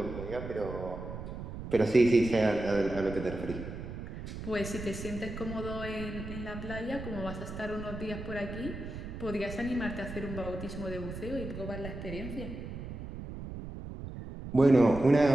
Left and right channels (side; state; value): right; noise; rumble, 9 dB below the sound